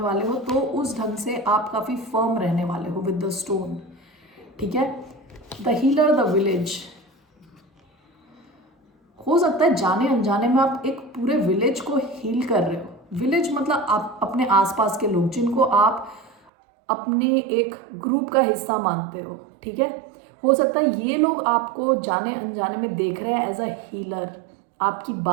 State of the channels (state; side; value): drops out; left; at 16.4 s